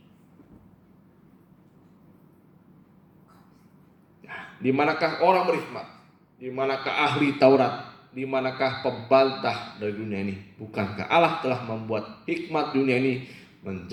di manakah orang berhikmat? Di manakah ahli Taurat? Di manakah pembantah dari dunia ini? Bukankah Allah telah membuat hikmat dunia ini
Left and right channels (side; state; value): both; identical; correlation 1.00